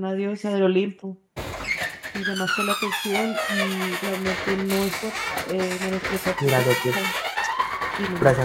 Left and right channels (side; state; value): both; identical; correlation 1.00